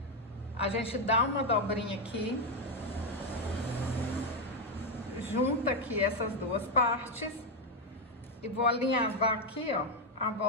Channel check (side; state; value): both; normal; correlation 0.05